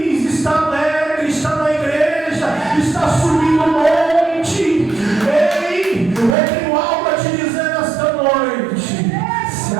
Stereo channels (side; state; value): left; drops out; at 6.4 s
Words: está alegre, está na igreja, está subindo o monte. Ei, eu tenho algo a te dizer nesta noite: se